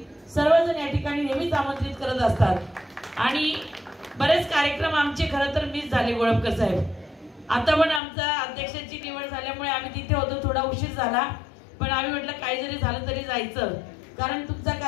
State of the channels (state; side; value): drops out; right; at 8.0 s